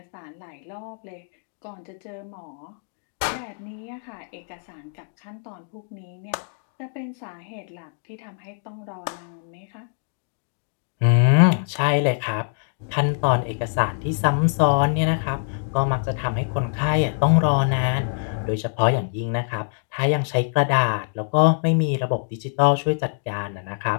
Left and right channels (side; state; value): right; silent; digital silence